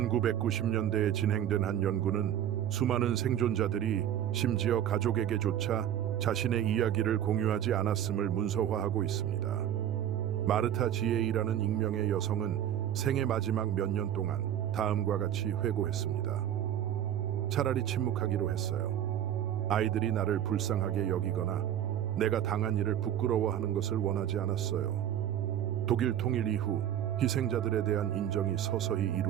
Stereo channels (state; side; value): quieter; left; 10.6 dB